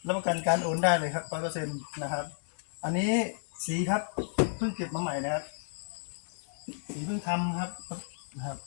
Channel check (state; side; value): silent; right; 56 dB below the other